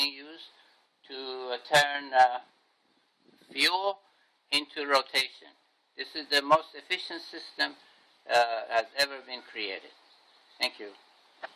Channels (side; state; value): both; identical; correlation 1.00